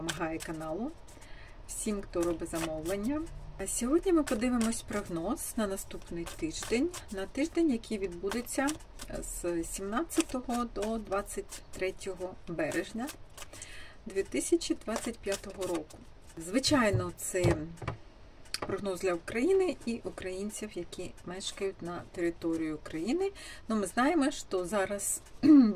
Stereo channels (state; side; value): identical; both; correlation 1.00